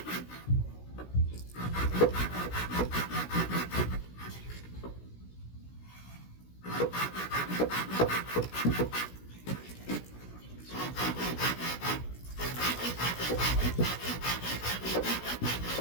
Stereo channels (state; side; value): late; right; 16 ms